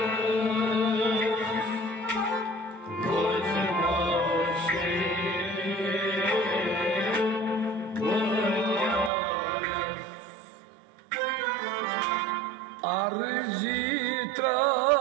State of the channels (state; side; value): drops out; left; at 9.1 s